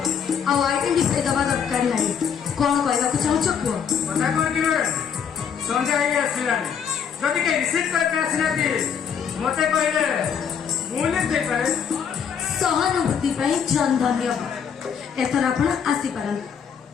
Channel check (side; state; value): right; quieter; 7.4 dB